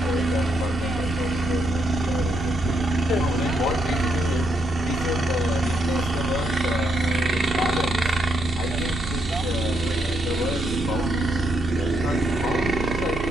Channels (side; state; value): both; normal; correlation 0.77